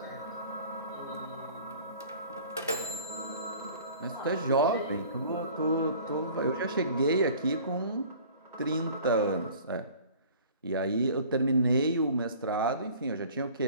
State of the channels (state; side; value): inverted; both; correlation -0.48